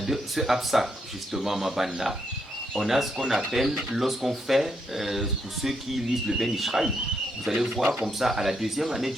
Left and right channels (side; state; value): both; normal; correlation 0.78